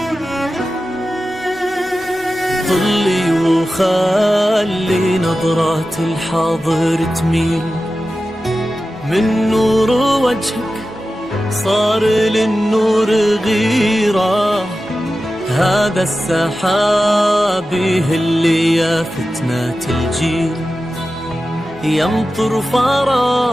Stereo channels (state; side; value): normal; both; correlation 0.93